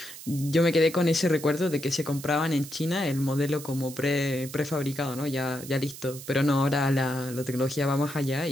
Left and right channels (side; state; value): right; noise; hiss, 14 dB below the sound